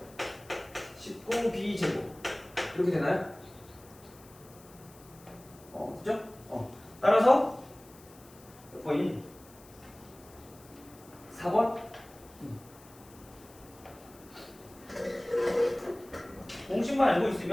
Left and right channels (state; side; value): noise; left; hiss, 23 dB below the sound